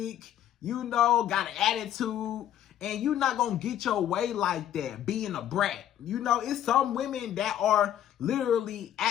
got an attitude, and you're not going to get your way like that, being a brat. It's some women that are literally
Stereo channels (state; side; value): quieter; right; 11.0 dB